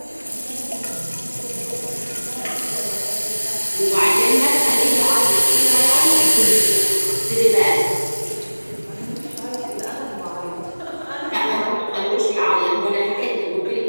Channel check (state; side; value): inverted; both; correlation -1.00